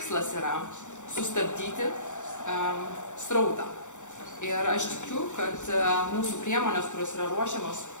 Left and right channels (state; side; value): late; right; 0.85 ms